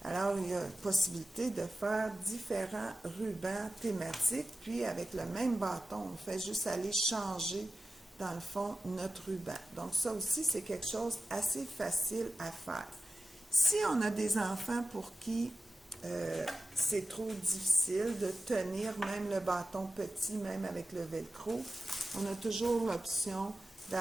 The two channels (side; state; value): both; normal; correlation 0.94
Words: Alors, il y a possibilité de faire différents rubans thématiques, puis avec le même bâton, on fait juste aller changer, dans le fond, notre ruban. Donc, ça aussi, c'est quelque chose assez facile à faire. Si on a des enfants pour qui c'est trop difficile de tenir même le bâton petit, même avec le velcro, on a toujours l'option